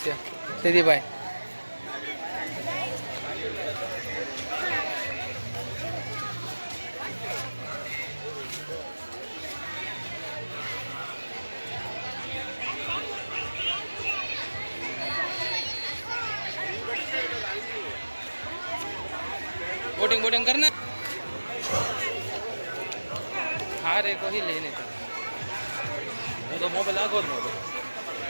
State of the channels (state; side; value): inverted; both; correlation -1.00